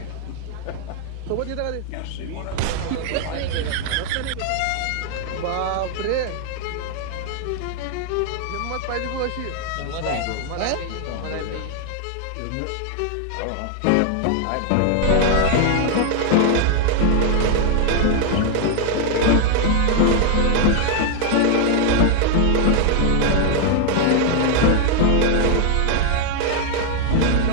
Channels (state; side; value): different; both; correlation 0.00